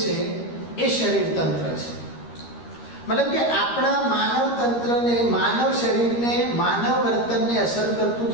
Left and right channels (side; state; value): right; late; 13 ms